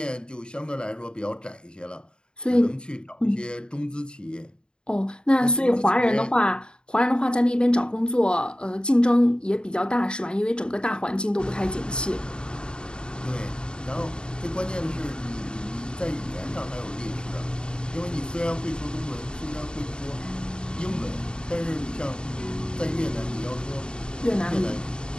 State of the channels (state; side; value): late; right; 0.050 ms